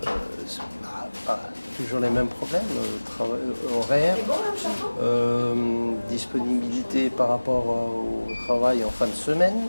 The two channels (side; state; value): both; inverted; correlation -1.00